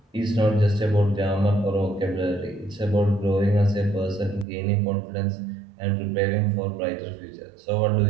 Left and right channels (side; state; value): left; drops out; at 4.5 s